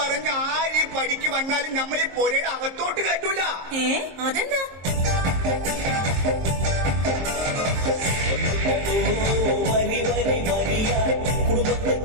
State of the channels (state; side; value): late; left; 23 ms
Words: ആര് ഈ പടിക്ക് വന്നാലും നമ്മൾ ഈ പുരയുടെ അകത്തോട്ട് കയറ്റൂല. അതെന്താ? വരി വരി വരിയ കുടുംബത്തെ